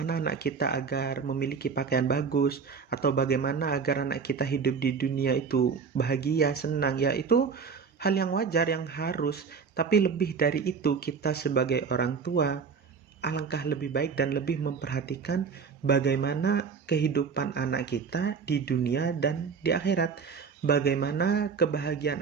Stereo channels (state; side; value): quieter; left; 5.7 dB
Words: anak kita agar memiliki pakaian bagus, atau bagaimana agar anak kita hidup di dunia itu bahagia, senang. Ya, itu hal yang wajar, yang harus. Tapi lebih dari itu, kita sebagai orang tua alangkah lebih baik dan lebih memperhatikan bagaimana kehidupan anak kita di dunia dan di akhirat. Bagaimana kebahagiaan